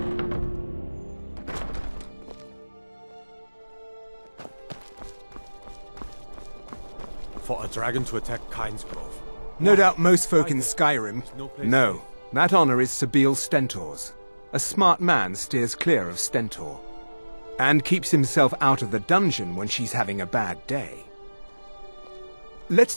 For a dragon to attack Kynesgrove. No doubt most folk in Skyrim. No, that honor is Sabeel Stentor's. A smart man steers clear of Stentor. And keeps himself out of the dungeon when she's having a bad day.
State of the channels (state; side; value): inverted; both; correlation -1.00